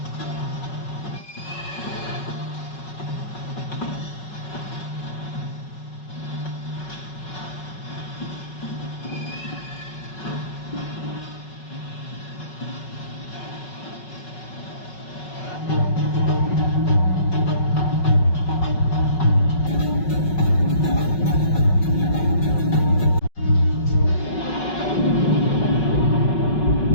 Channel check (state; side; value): late; right; 5.4 ms